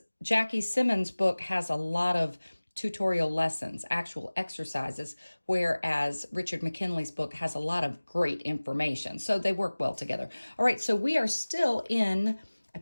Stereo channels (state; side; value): inverted; both; correlation -1.00